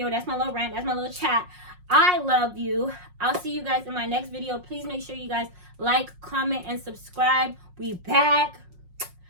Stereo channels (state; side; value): late; left; 5.5 ms